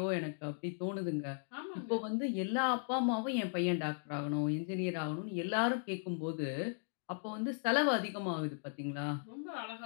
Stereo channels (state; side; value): silent; right; digital silence